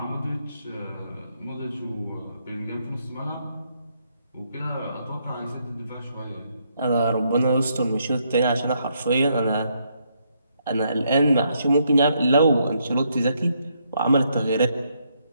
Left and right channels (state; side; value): inverted; both; correlation -0.75